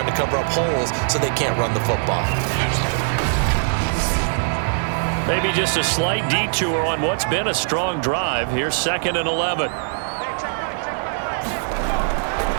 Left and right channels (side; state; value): left; silent; digital silence